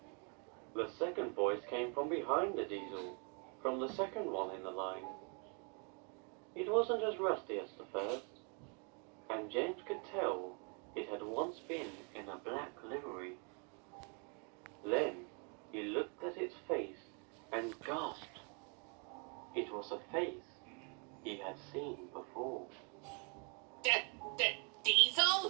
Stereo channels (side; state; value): left; quieter; 36.5 dB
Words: The second voice came from behind the diesel, from the second one in the line. It wasn't as rusty as the first, and James could tell it had once been in a black livery. Then he looked at its face and gasped. It was a face he had seen before.